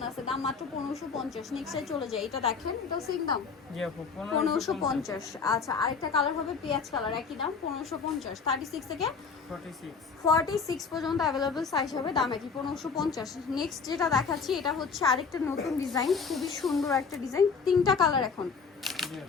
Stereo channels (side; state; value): right; quieter; 5.5 dB